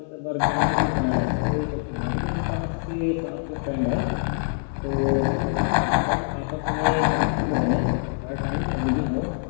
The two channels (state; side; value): silent; right; digital silence